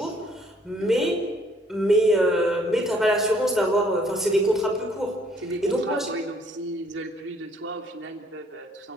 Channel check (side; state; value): both; normal; correlation 0.63